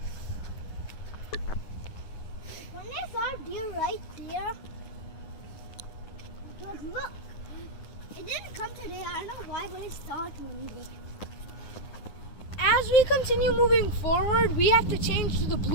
When I saw a deer right there, because look, it didn't come today. I don't know why, but I saw it one day. As we continue moving forward, we have to change to the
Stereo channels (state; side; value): late; right; 9.4 ms